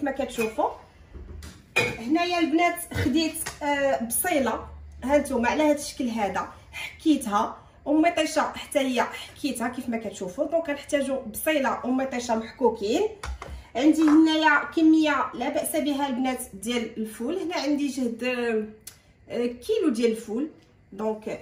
ما كتشوفوا. هنايا البنات خديت بصيله، ها نتوما على هذا الشكل هذا، حكيتها ومطيشه حتى هي حكيتها كيف ما كتشوفوا. دونك غنحتاجوا بصيله ومطيشه محكوكين. عندي هنايا كميه لا باس بها البنات ديال الفول، هنا عندي جهد كيلو ديال الفول. دونك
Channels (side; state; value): both; identical; correlation 1.00